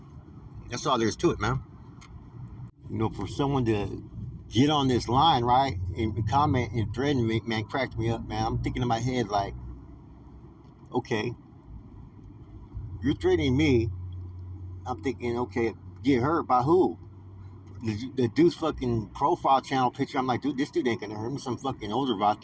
That's all there is to it, man. You know, for someone to get on this line, right, and comment and threaten me, man, cracked me up, man. I'm thinking in my head like, okay, you're threatening me. I'm thinking, okay, get hurt by who? The dude's fucking profile channel picture, I'm like, dude, this dude ain't gonna hurt me. Some fucking older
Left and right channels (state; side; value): identical; both; correlation 1.00